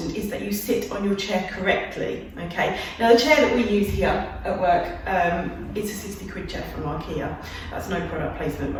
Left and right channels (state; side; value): identical; both; correlation 1.00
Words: is that you sit on your chair correctly, okay? Now the chair that we use here at work, it's a 60 quid chair from IKEA. That's no product placement